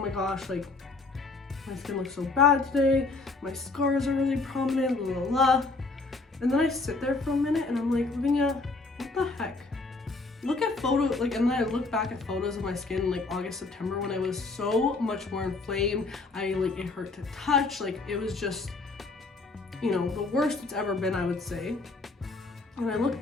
my gosh, like my skin looks so bad today, my scars are really prominent, blah, blah, blah. And then I sit there for a minute and I'm like, Lavinia, what the heck? Look at photos, and then I look back at photos of my skin in like August, September when I was so much more inflamed. It hurt to touch, it was just, the worst it's ever been, I would say. And I look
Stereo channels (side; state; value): right; quieter; 3.6 dB